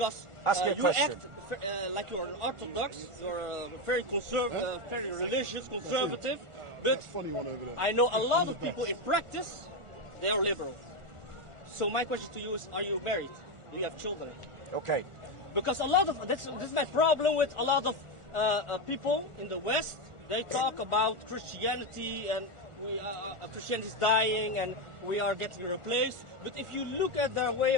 you act like you're an Orthodox, you're very conservative, very religious, conservative, but I know a lot of people in practice, they are liberal. So my question to you is, are you married? Do you have children? Okay. Because a lot of, this is my problem with a lot of people in the West, they talk about Christianity and Christianity is dying and we are getting replaced. But if you look at their way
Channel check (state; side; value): late; left; 1.4 ms